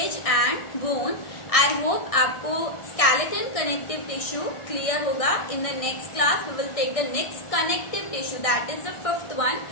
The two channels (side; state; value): right; late; 1.6 ms